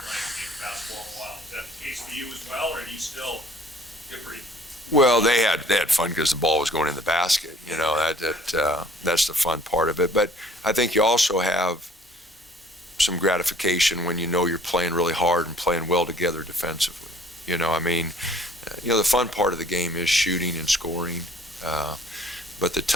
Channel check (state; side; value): normal; both; correlation 0.55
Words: game basketball in a while. Is that the case for you as well, or do you still get pretty? Well, they had fun because the ball was going in the basket. That's the fun part of it. But I think you also have some gratification when you're playing really hard and playing well together defensively. The fun part of the game is shooting and scoring. But the